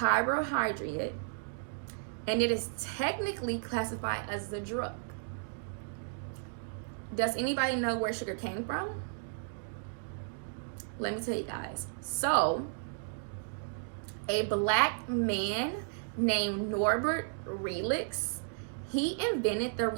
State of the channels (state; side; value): silent; left; digital silence